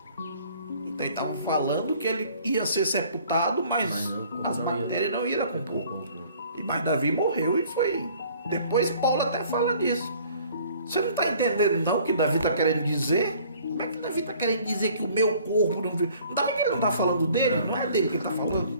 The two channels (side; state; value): both; inverted; correlation -0.55